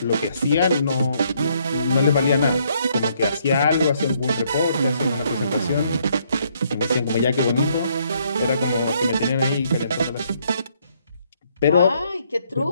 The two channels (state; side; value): inverted; both; correlation -0.70